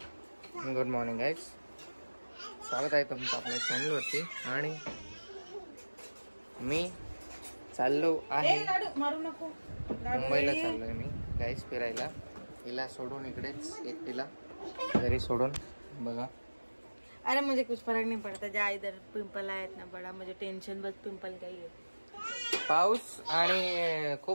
Good morning guys. स्वागत आहे तुमचं आपल्या चॅनलवरती. आणि मी चाललो आहे मारू नको. मुंबईला चाललोय मी गाइस फिरायला. हिला सोडून इकडेच एकटीला घरी सोडून. बघा अरे मुझे कुछ फर्क नहीं पड़ता. जा इधर पिंपल आया इतना बड़ा. मुझे टेंशन बस पिंपल का ही है. पाऊस आणि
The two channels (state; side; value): inverted; both; correlation -1.00